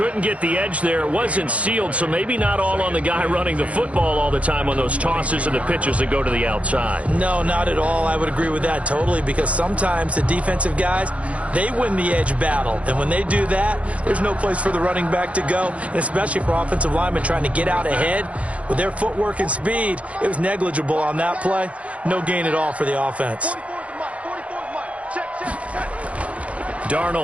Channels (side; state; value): left; late; 0.064 ms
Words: couldn't get the edge there. It wasn't sealed, so maybe not all on the guy running the football all the time on those tosses and the pitches that go to the outside. No, not at all. I would agree with that totally, because sometimes the defensive guys, they win the edge battle. And when they do that, there's no place for the running back to go, and especially for offensive linemen trying to get out ahead. With their footwork and speed, it was negligible on that play. No gain at all for the offense.